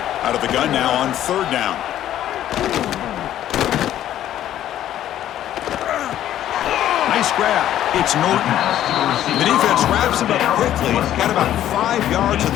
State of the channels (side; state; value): right; quieter; 12.0 dB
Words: Out of the gun now on 3rd down. Nice grab. It's Norton. The defense wraps him up quickly. Got about 5 yards of